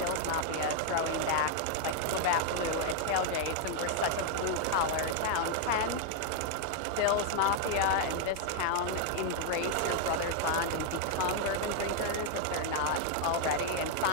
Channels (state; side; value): different; both; correlation 0.00